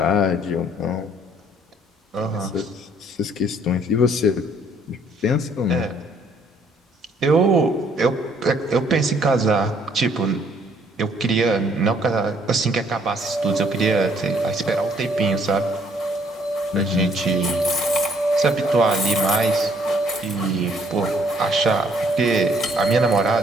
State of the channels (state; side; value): normal; both; correlation 0.64